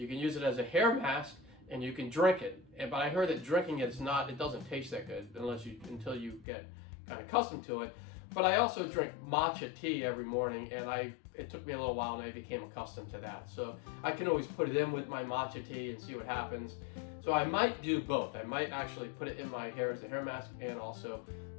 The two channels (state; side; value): drops out; right; at 6.5 s